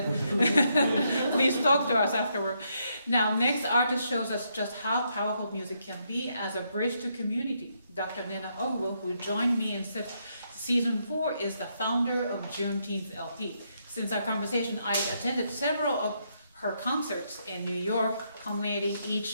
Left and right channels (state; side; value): inverted; both; correlation -0.77